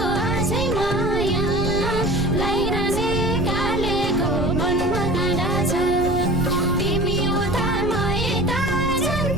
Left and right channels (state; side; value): noise; right; rumble, 5 dB below the sound